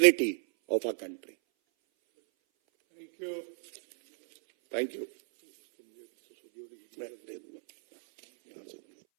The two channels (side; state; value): left; silent; 57 dB below the other